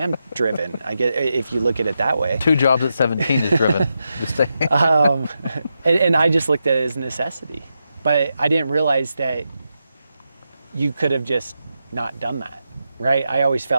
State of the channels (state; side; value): inverted; both; correlation -0.87